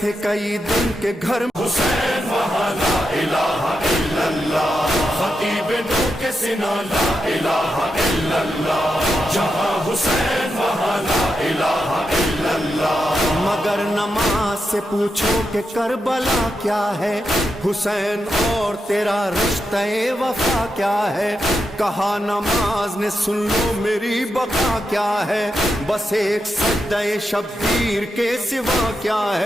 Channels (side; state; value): both; normal; correlation 0.87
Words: थे कई दिन के घर। हुसैन वहाँ ला इलाहा इल्लल्लाह, खतीब नू के सिना ला इलाहा इल्लल्लाह। जहाँ हुसैन वहाँ ला इलाहा इल्लल्लाह। मगर नमाज से पूछो कि करबला क्या है, हुसैन और तेरा रिश्ते वफा क्या है। कहा नमाज ने सुन लो मेरी बका क्या है, बस एक सज्दे शब्बीर के सिवा क्या